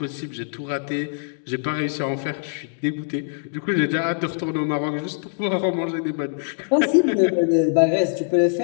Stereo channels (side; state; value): right; silent; digital silence